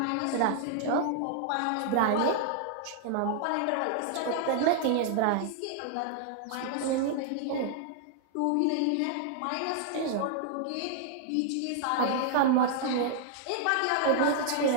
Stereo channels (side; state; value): both; different; correlation -0.01